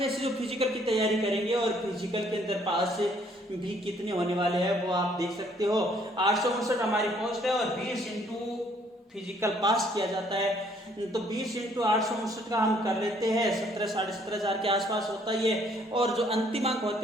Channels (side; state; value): both; normal; correlation 0.64